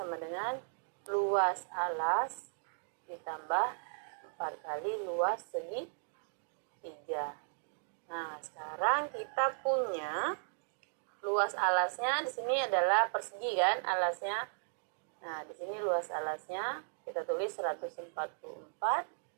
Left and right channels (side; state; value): left; silent; digital silence